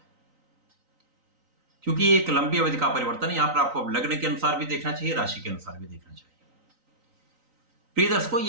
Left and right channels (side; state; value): left; late; 3.9 ms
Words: क्योंकि एक लंबी अवधि का परिवर्तन है, यहां पर आपको लग्न के अनुसार भी देखना चाहिए, राशि के अनुसार भी देखना चाहिए। प्रिय दर्शकों,